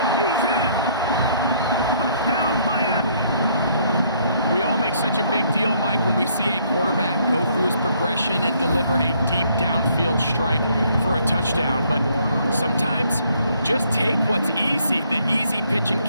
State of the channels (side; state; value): both; inverted; correlation -0.66